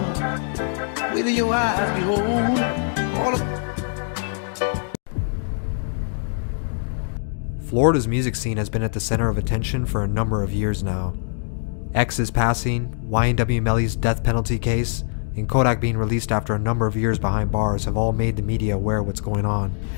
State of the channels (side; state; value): right; silent; 63 dB below the other